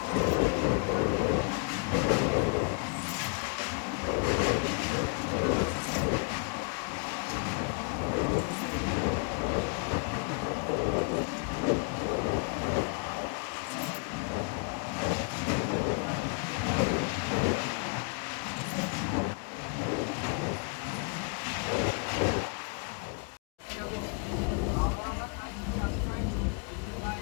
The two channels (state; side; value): quieter; right; 37.4 dB